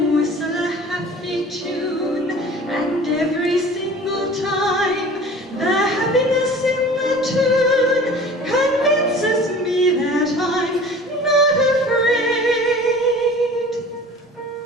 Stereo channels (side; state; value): both; normal; correlation 0.43